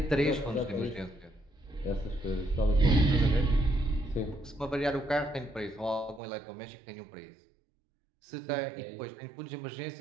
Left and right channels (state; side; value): drops out; left; at 6.2 s